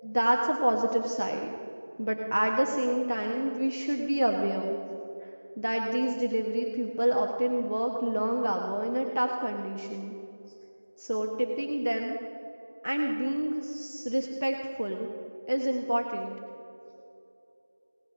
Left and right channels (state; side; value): inverted; both; correlation -1.00